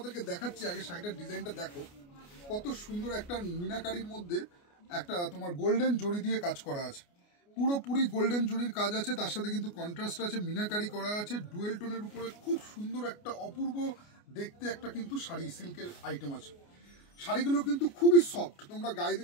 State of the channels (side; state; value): right; late; 29 ms